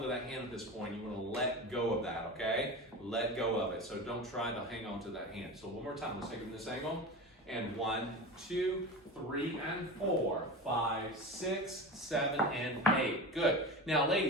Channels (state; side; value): normal; both; correlation 0.28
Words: to that hand at this point. You want to let go of that, okay? Let go of it. So don't try to hang on to that hand. So one more time, let's take it from this angle. And 1, 2, 3, and 4, 5, 6, 7, and 8. Good. Now,